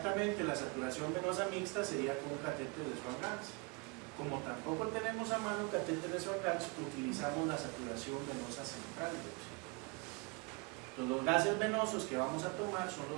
la saturación venosa mixta sería con un catéter de Swan-Ganz. Como tampoco tenemos a mano catéter de Swan-Ganz, utilizamos la saturación venosa central de oxígeno. Entonces, los gases venosos que vamos a tomar son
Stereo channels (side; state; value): left; quieter; 29.1 dB